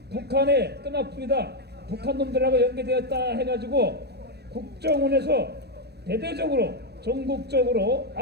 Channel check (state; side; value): late; left; 0.47 ms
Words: 북한의 끈앞입니다. 북한 놈들하고 연계되었다 해가지고 국정원에서 대대적으로 전국적으로